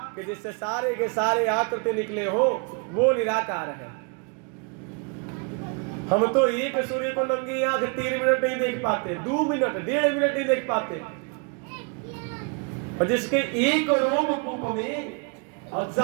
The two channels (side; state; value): left; quieter; 34.7 dB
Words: कि जिससे सारे के सारे आकृति निकले हो वो निराकार है। हम तो एक सूर्य को नंगी आंख 3 मिनट नहीं देख पाते, 2 मिनट 1.5 मिनट नहीं देख पाते, और जिसके एक रोमकूप में